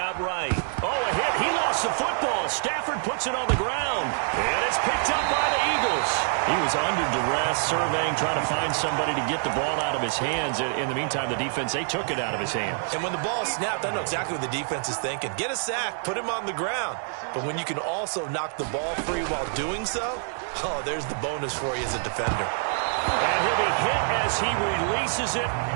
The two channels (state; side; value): silent; left; digital silence